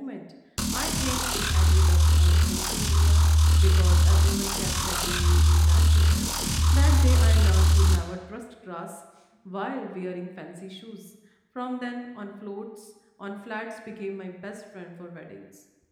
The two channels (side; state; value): both; identical; correlation 1.00